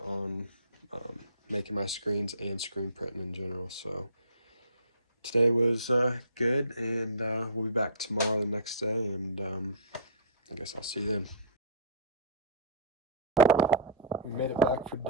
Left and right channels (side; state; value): both; inverted; correlation -0.35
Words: making my screens and screen printing in general. So today was good, and we'll be back tomorrow, the next day, and I guess I'll see you then. We made it back for